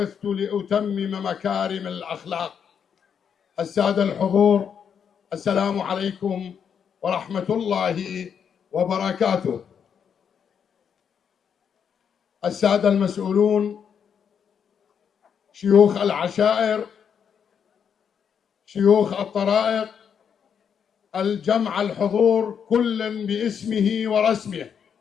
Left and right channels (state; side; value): quieter; right; 7.5 dB